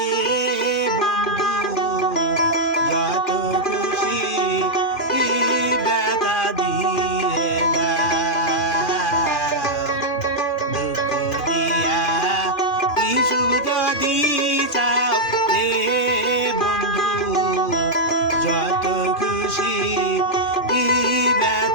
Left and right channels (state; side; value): late; right; 2.4 ms